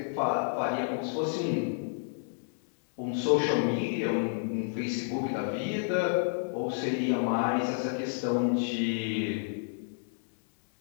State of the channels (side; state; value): right; silent; digital silence